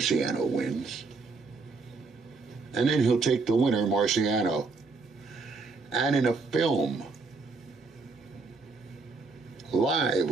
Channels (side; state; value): left; quieter; 4.2 dB